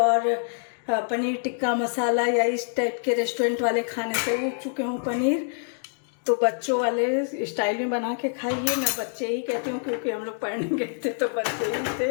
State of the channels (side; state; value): right; silent; digital silence